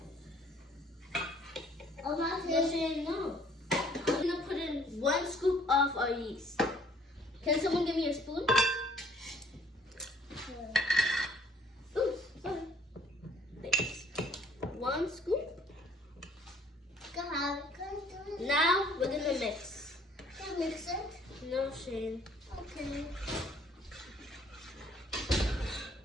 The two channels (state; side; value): normal; both; correlation 0.60